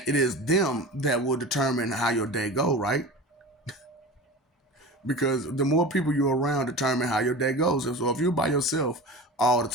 it is them that will determine how your day go. Right? Because the more people you're around determine how your day goes. So if you're by yourself all the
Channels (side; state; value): both; normal; correlation 0.32